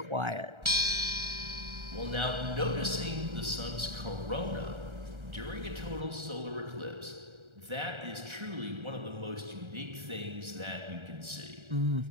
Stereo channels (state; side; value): late; left; 1.3 ms